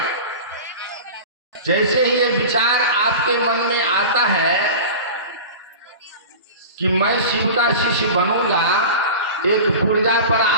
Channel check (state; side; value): inverted; both; correlation -0.33